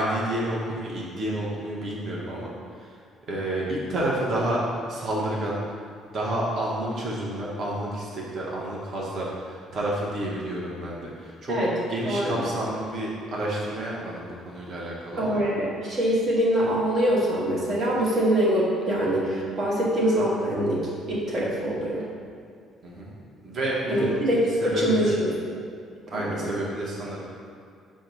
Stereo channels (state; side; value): normal; both; correlation 0.60